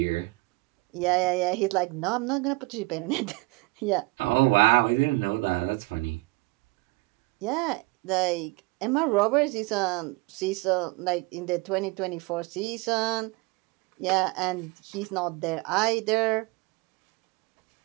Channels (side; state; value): left; quieter; 23.6 dB